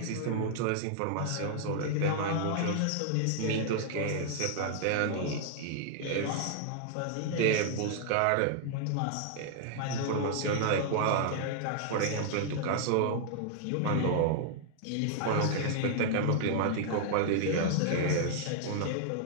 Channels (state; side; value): different; both; correlation 0.00